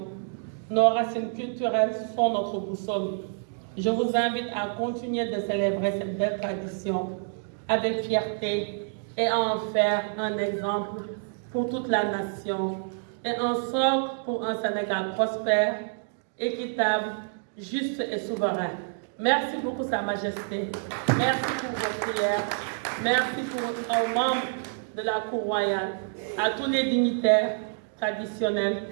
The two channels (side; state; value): left; silent; digital silence